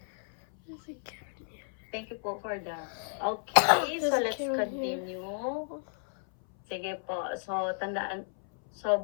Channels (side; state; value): right; silent; 57 dB below the other